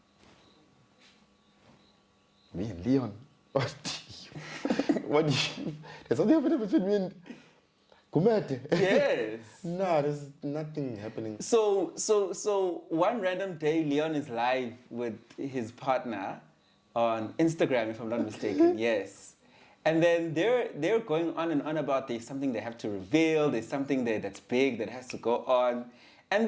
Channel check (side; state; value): both; identical; correlation 1.00